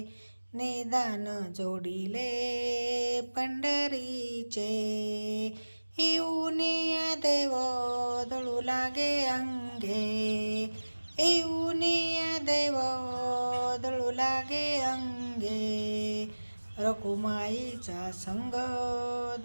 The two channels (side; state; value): both; inverted; correlation -1.00